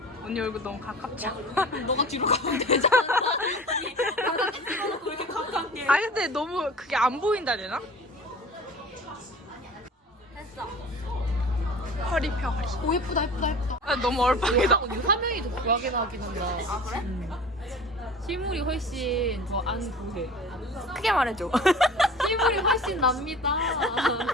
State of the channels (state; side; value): normal; both; correlation 0.40